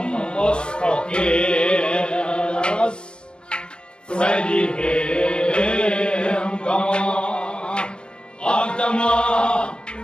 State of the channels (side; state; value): right; late; 0.055 ms